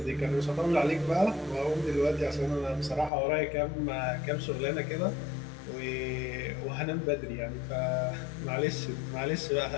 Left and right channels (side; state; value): right; drops out; at 3.1 s